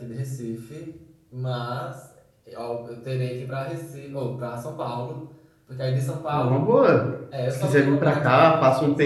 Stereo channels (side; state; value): both; identical; correlation 1.00